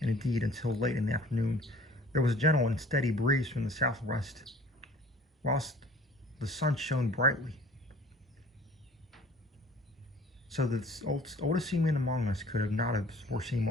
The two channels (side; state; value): both; normal; correlation 0.49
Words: and indeed until late in the afternoon, there was a gentle and steady breeze from the southwest, whilst the sun shone brightly. So that the oldest seaman among us could not have foreseen